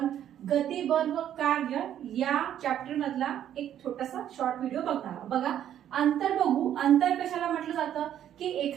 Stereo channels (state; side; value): quieter; left; 10.6 dB